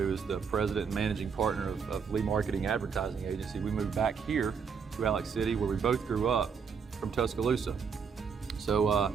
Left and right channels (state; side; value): quieter; left; 6.2 dB